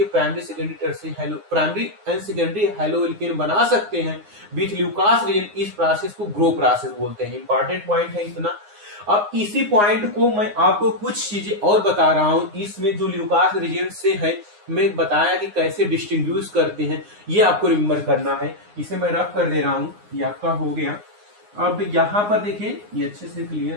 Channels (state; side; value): late; left; 9.7 ms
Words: प्राइमरी एंड सेकेंडरी हाइलोएल्केन बना सकते हैं विथ ल्यूकास रिएजेंट। इस प्रोसेस को ग्रो प्रोसेस बोलते हैं। इंपॉर्टेंट पॉइंट है इतना। अब इसी पॉइंट को मैं आपको कुछ चीजें और बता रहा हूं। इसमें जो ल्यूकास रिएजेंट से है, मैं बताया कि कैसे डिस्टिंग्विश करते हैं, ये आपको रिमेम्बर करना है। इसे मैं रफ कर दे रहा हूं, ये आपका हो गया। अब यहां पर देखिए, ये अच्छे से